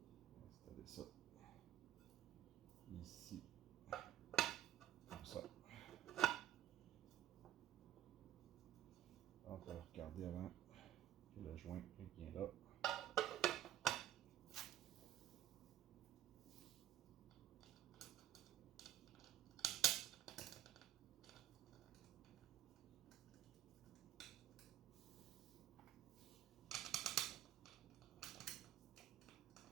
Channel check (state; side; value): quieter; left; 12.1 dB